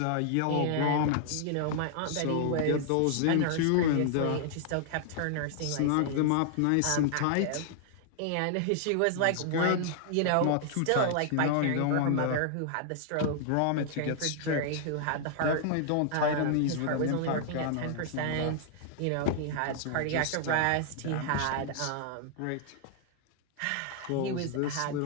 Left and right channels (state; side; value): different; both; correlation 0.00